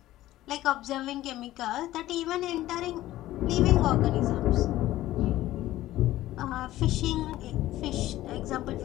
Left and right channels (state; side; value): quieter; right; 15.3 dB